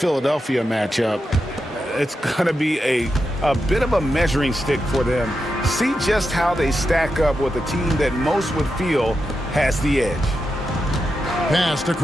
matchup, it's going to be a bit of a measuring stick for them. See just how they stack up with a team that most would feel has the edge. Pass to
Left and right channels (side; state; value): both; normal; correlation 0.87